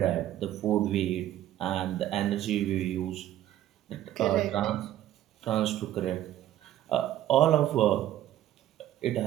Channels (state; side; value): quieter; left; 12.8 dB